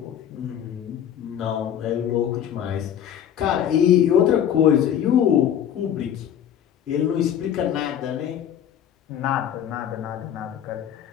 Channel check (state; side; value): quieter; right; 9.7 dB